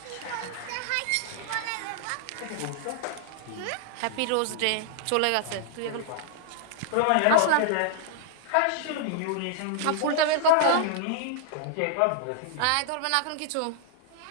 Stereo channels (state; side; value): different; both; correlation -0.01